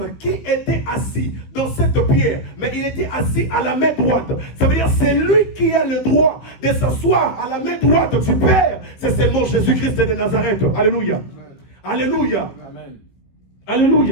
qui était assis dans cette pierre, mais il était assis à la main droite, ça veut dire c'est lui qui a le droit de s'asseoir à la main droite du Père, c'est seulement Jésus-Christ de Nazareth. Alléluia. Alléluia. Amen.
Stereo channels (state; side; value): late; right; 16 ms